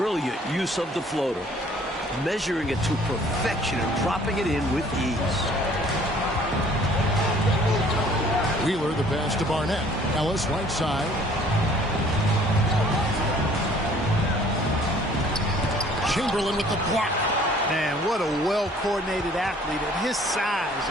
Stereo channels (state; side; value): normal; both; correlation 0.56